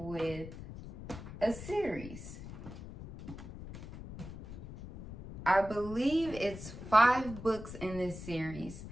a series. I believe it's 5 books in this series.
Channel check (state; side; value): noise; left; rumble, 12 dB below the sound